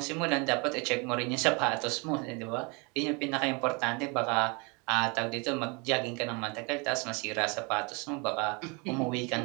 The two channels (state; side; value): quieter; left; 30.5 dB